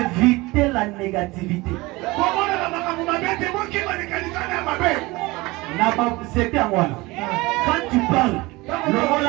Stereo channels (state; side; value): quieter; left; 22.1 dB